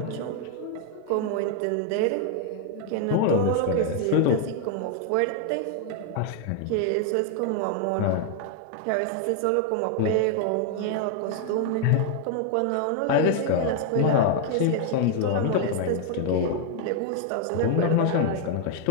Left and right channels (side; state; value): both; different; correlation 0.00